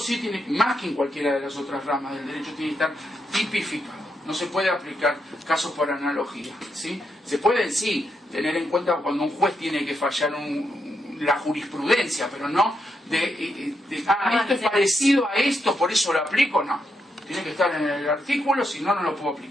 tiene, más que en cualquiera de las otras ramas del derecho, tiene que estar tipificado. No se puede aplicar casos por analogía, ¿sí? Se pueden, sí, tener en cuenta cuando un juez tiene que fallar la jurisprudencia, pero no esto es parecido a esto, por eso lo aplico, no. Tiene que estar en el artículo, si no, no lo puedo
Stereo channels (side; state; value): both; normal; correlation 0.82